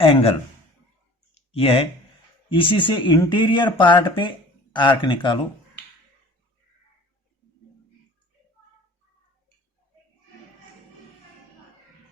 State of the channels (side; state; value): both; normal; correlation 0.46